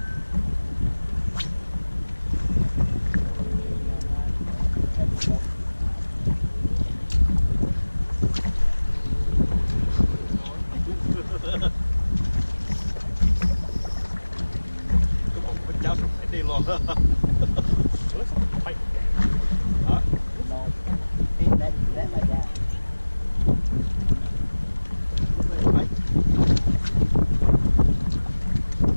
Cái bụng con cháu sụp phải đi luôn. Hả? No. Hey, let like that.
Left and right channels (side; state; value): both; inverted; correlation -1.00